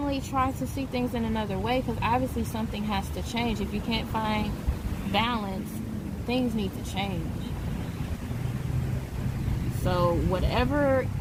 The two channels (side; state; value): both; identical; correlation 1.00